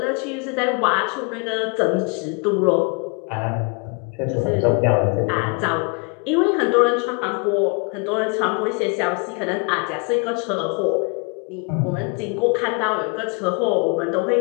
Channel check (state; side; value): quieter; right; 34.7 dB